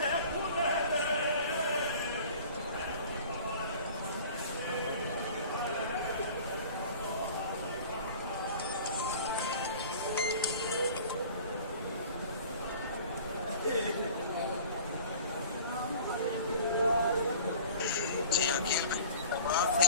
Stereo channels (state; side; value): inverted; both; correlation -0.45